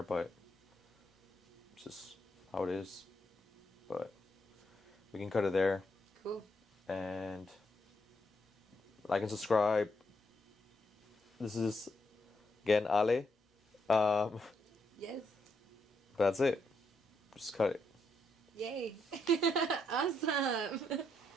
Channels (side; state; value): both; normal; correlation 0.78